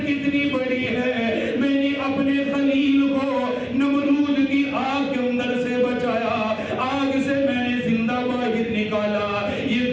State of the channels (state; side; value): identical; both; correlation 1.00